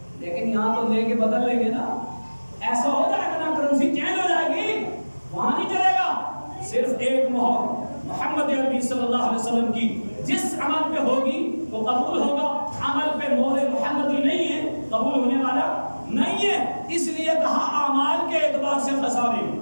لیکن یہاں تو لے کے بدل لیں گے نا. ایسا ہو جائے گا نا, کرنسی چینج ہو جائے گی, وہاں نہیں چلے گا. صرف ایک مہر محمد عربی صلی اللہ علیہ وسلم کی جس عمل پہ ہوگی وہ قبول ہوگا. عمل پہ مہر محمدی نہیں ہے قبول ہونے والا نہیں ہے. اس لیے کہا اعمال کے اعتبار سے خسارے,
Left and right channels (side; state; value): both; inverted; correlation -1.00